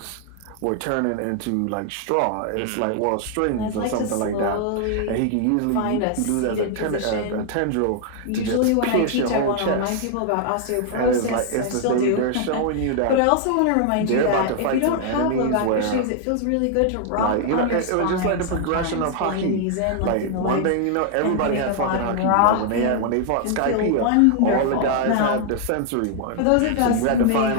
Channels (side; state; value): both; different; correlation 0.00